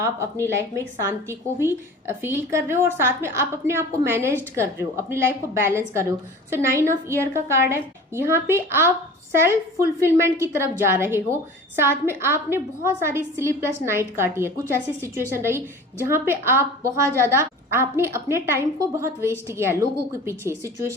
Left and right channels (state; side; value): normal; both; correlation 0.40